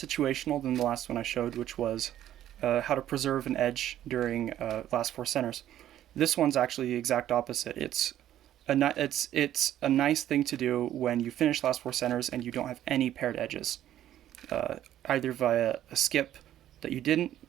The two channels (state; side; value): quieter; left; 12.1 dB